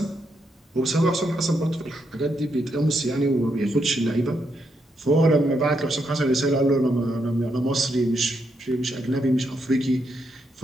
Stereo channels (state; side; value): normal; both; correlation 0.79